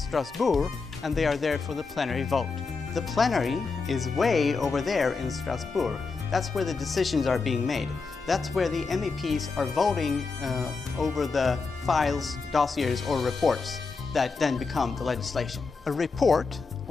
and they are there for the plenary vote. The plenary is way over there in Strasbourg. That's where the decisions are being made. That's where the MEPs are voting over the files, dossiers or reports that then become the legislation. A report,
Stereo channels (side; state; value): right; quieter; 4.5 dB